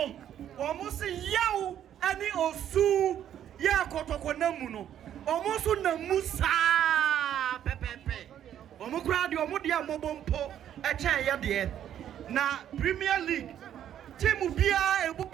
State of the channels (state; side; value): quieter; left; 10.4 dB